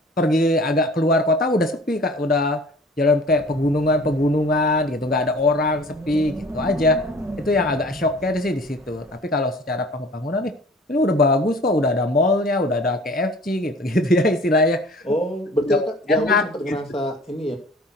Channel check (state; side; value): normal; both; correlation 0.46